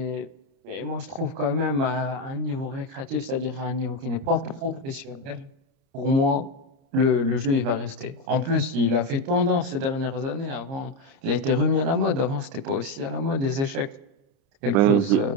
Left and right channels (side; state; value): left; late; 30 ms